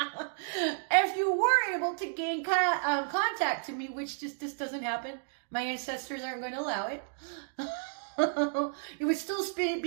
you were able to gain contact to me, which this doesn't happen, my ancestors aren't going to allow it. You would still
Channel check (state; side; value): silent; left; digital silence